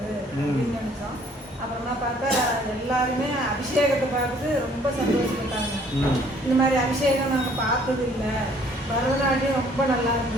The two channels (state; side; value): normal; both; correlation 0.59